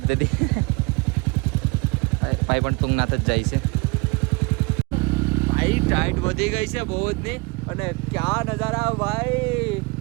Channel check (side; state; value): left; quieter; 27.3 dB